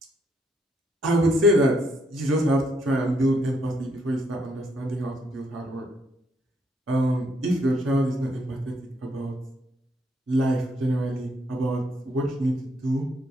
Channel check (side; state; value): both; normal; correlation 0.73